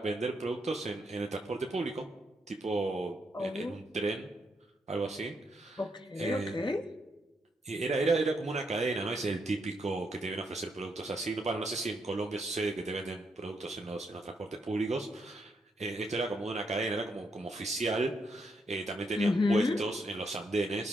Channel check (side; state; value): both; normal; correlation 0.78